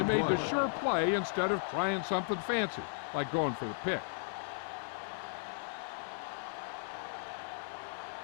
made the sure play instead of trying something fancy, like going for the pick.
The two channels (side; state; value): right; silent; 54 dB below the other